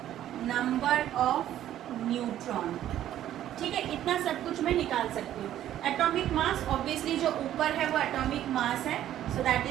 number of neutron. ठीक है. इतना सब कुछ मैं निकाल सकती हूँ. एटॉमिक मास ऑब्वियसली जो ऊपर है वो एटॉमिक मास है, so that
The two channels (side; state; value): left; quieter; 12.0 dB